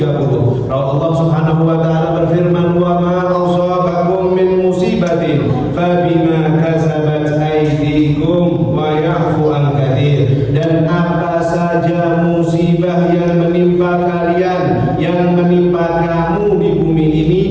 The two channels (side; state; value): both; identical; correlation 1.00